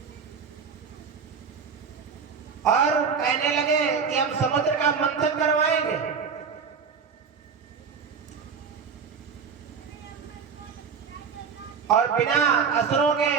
और कहने लगे कि हम समुद्र का मंथन करवाएंगे, और बिना असुरों के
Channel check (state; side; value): quieter; left; 6.0 dB